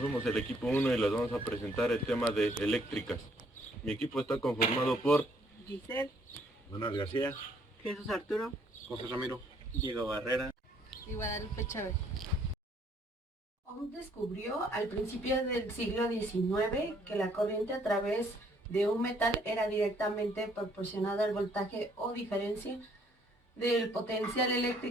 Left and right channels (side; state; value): both; normal; correlation 0.65